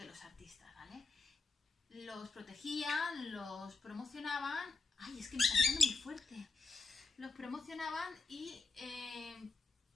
los artistas, ¿vale? Los protegían, los promocionaban. Ay, es que me está picando muy fuerte. Los promocionaban y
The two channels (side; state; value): right; quieter; 3.8 dB